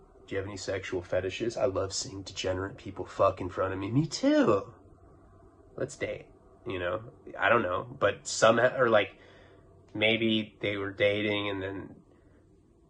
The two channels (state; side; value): identical; both; correlation 1.00